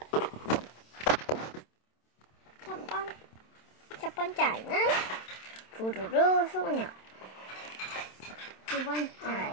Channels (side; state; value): right; late; 27 ms